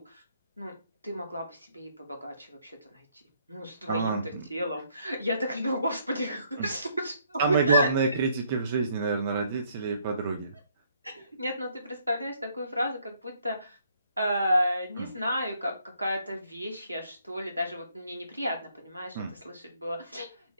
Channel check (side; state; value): both; inverted; correlation -0.68